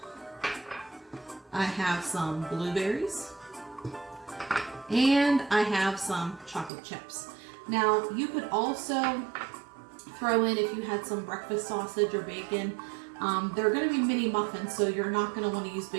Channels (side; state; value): left; drops out; at 6.7 s